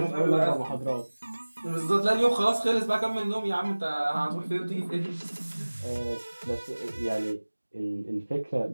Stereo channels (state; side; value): inverted; both; correlation -1.00